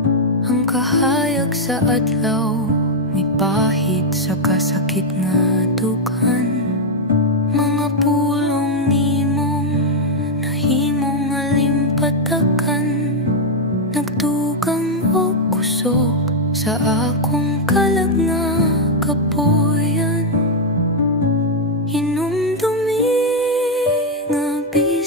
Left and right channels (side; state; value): both; normal; correlation 0.00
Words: ang kahayag sa adlaw may pahit sa kasakit nga dukan. Mga pulong nimong nahimong alimpatakan, nagtugang o kusog sa akong kalag nga kapuyan. Hinumdumi nga